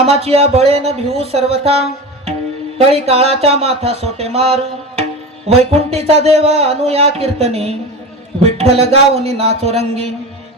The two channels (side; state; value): both; normal; correlation 0.27